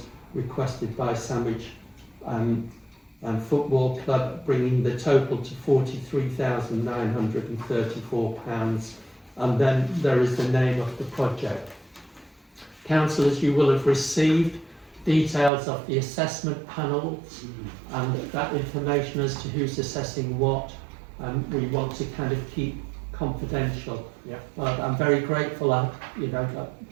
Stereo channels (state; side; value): drops out; left; at 15.5 s